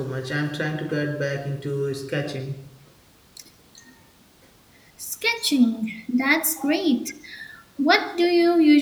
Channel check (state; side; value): identical; both; correlation 1.00